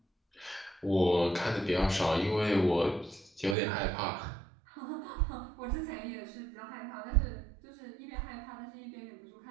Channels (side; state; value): left; drops out; at 3.6 s